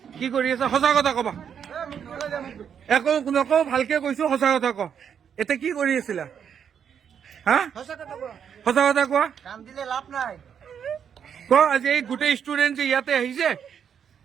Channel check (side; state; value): left; quieter; 7.9 dB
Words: কি কৰি আছে সঁচা কথা কবা একো নকওঁ ভালকে কৈছো সঁচা কথা ক এতিয়া কি কৰি আছিলা হা সঁচা কথা কোৱা ক আজি এই গোটেই ষ্টুডেণ্ট যে ইয়াতে আহিছে